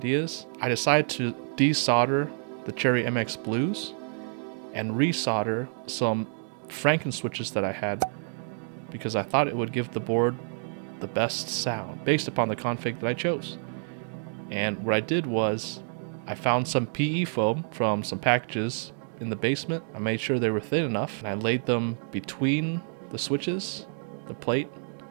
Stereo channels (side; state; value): left; silent; 59 dB below the other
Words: I decided to desolder the Cherry MX Blues and resolder some Franken switches that I had because I thought it would give the board the best sound based upon the config that I chose. And what I did was I found some PE foam from some packages in the basement. I made sure they were thin enough and I laid them between the switches, the plate,